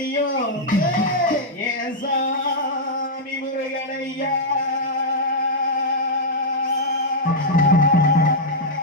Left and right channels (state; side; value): normal; both; correlation -0.05